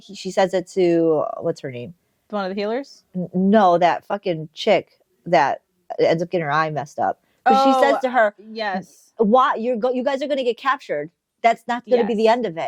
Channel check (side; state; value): both; identical; correlation 1.00